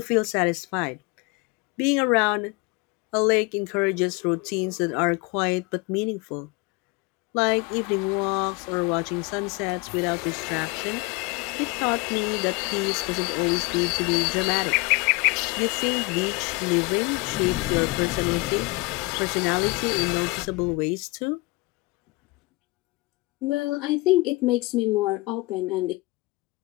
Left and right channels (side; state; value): right; quieter; 24.5 dB